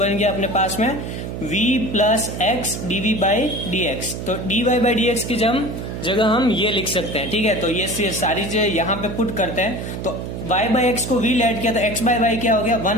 गया अपने पास में v + x dv/dx। तो dy/dx की जगह हम ये लिख सकते हैं। ठीक है, तो ये सारी चीजें यहाँ पे पुट करते हैं। तो y/x को v लेट किया तो x/y क्या हो गया,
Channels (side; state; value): right; noise; hum, 6 dB below the sound